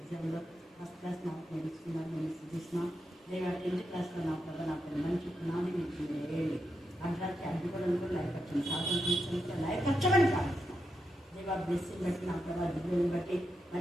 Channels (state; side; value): normal; both; correlation 0.85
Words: ఫస్ట్ క్లాస్ నాకు నేర్చుకున్నారు. నేను సుష్మా దేవ 10th క్లాస్లో నా ప్రభావ నాకు మంచి పునాది మీకు వేయండి. అంటానికి అడ్డుకోవడం కూడా లైఫ్ స్వాతంత్రించడానికి లైఫ్ వచ్చమని ప్రార్థిస్తున్నాం. దేవ బ్లెస్సింగ్ బట్టి నా ప్రభావ దిగుని బట్టి